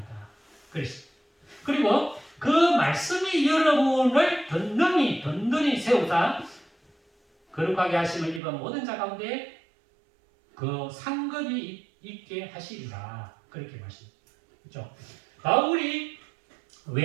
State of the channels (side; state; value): left; drops out; at 8.4 s